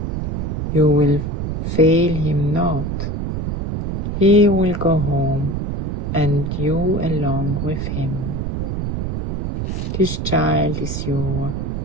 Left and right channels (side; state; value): right; noise; rumble, 2 dB below the sound